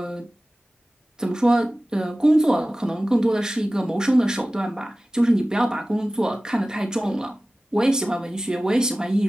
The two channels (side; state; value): both; normal; correlation 0.97